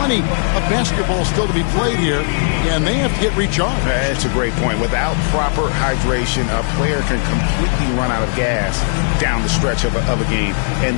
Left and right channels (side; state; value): right; silent; digital silence